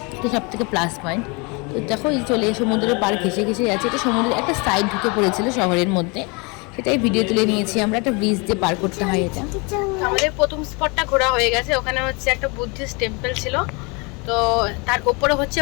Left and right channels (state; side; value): quieter; right; 30.0 dB